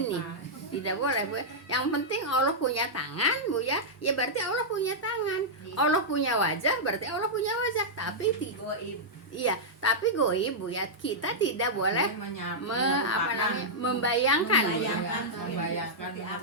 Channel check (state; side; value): normal; both; correlation -0.09